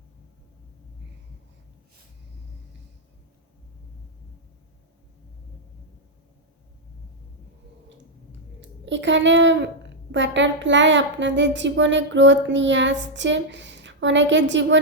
এখানে বাটারফ্লাই আপনাদের জীবনে গ্রোথ নিয়ে আসছে, অনেকের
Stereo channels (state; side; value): normal; both; correlation -0.02